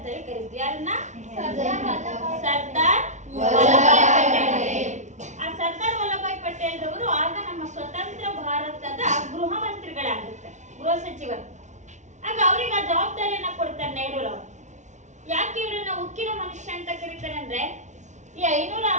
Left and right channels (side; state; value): left; late; 0.34 ms